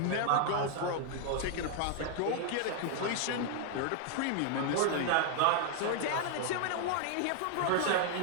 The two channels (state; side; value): different; both; correlation 0.00